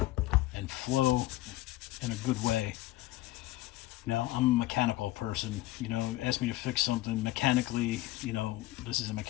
flow in a good way. I'm a mechanical person. Ask me to fix something mechanically. This is a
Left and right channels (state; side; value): quieter; right; 17.0 dB